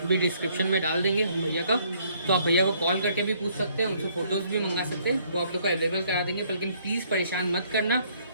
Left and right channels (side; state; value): both; inverted; correlation -0.65